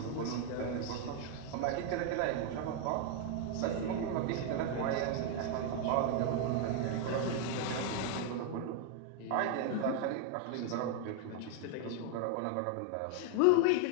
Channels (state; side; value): different; both; correlation 0.00